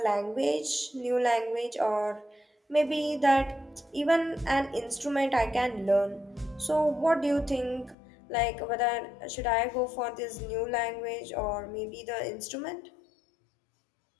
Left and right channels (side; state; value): right; drops out; at 8.0 s